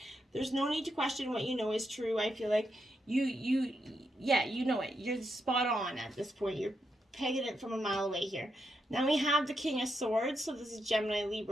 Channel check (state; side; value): normal; both; correlation 0.83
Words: there's no need to question what you know is true. I feel like you know it. You're spot on at this point. You're pegging it from a mile away here. Now we have the King of Swords. So this is Gemini,